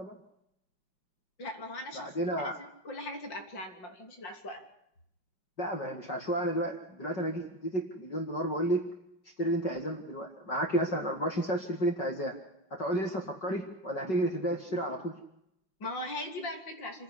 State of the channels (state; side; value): late; right; 5.3 ms